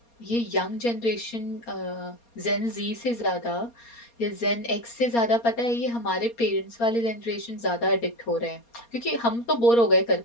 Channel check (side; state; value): right; late; 4.3 ms